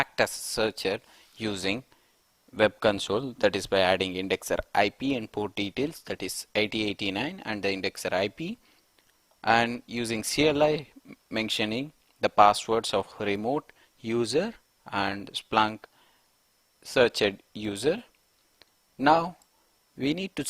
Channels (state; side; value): identical; both; correlation 1.00